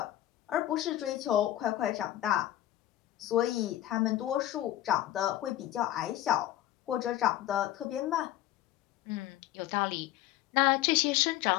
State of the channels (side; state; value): right; quieter; 13.8 dB